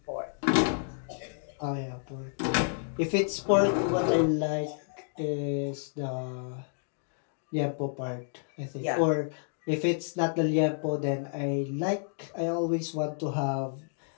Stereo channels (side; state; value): right; silent; digital silence